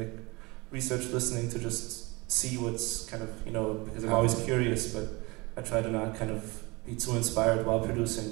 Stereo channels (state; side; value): quieter; left; 25.1 dB